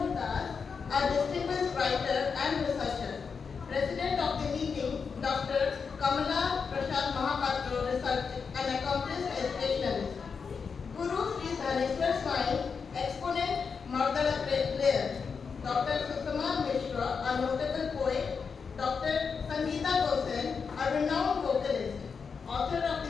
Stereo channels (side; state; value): right; quieter; 5.7 dB